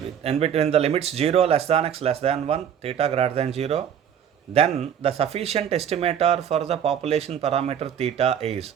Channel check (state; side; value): quieter; left; 8.8 dB